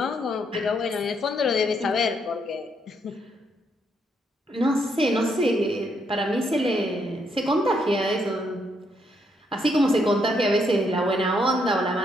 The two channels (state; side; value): normal; both; correlation 0.75